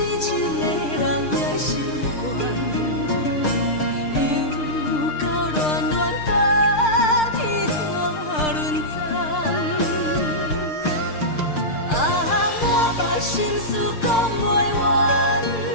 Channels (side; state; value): right; late; 6.6 ms